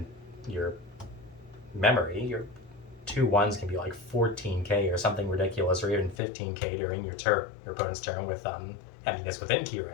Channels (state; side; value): drops out; right; at 6.2 s